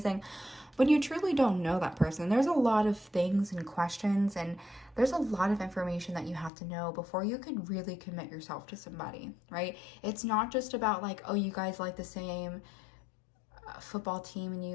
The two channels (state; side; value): drops out; right; at 6.5 s